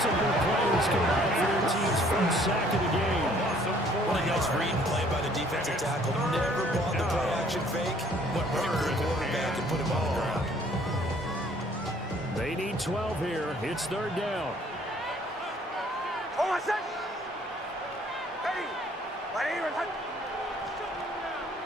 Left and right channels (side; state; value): both; normal; correlation 0.59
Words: players combined for their team's first sack of the game. What a nice read and play by the defensive tackle. Never bought the play-action fake. Went right for the quarterback and put him on the ground. They need 12 here. It's third down. Hold on, set. Ready. Right here.